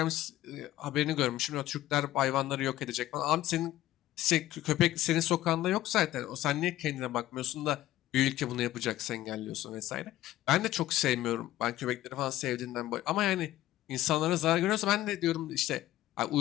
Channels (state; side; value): quieter; right; 14.6 dB